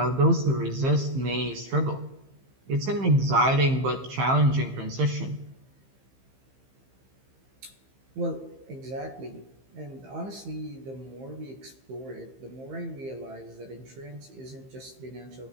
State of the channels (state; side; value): late; left; 15 ms